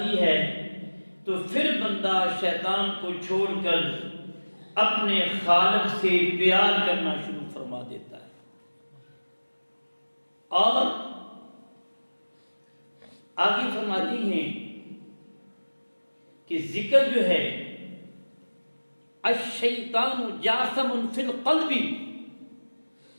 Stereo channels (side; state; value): both; inverted; correlation -1.00